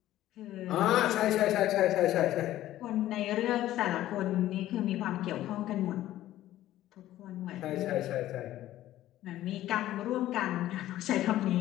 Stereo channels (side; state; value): right; quieter; 14.1 dB